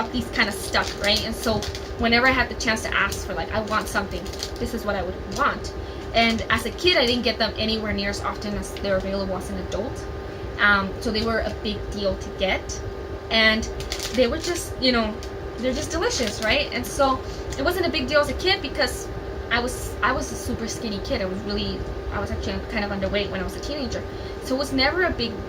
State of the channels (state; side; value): identical; both; correlation 1.00